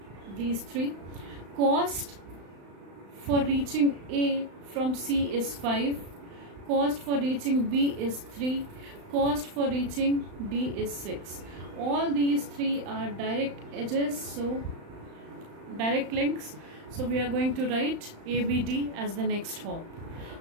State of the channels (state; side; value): late; left; 35 ms